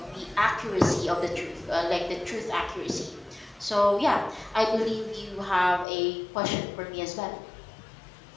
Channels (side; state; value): right; drops out; at 5.9 s